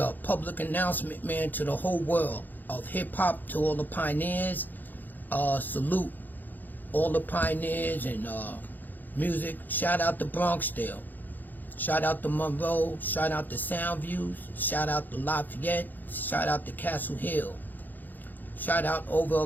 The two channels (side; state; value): right; late; 0.086 ms